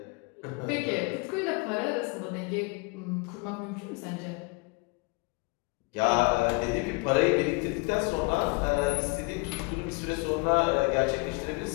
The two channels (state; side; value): quieter; right; 29.6 dB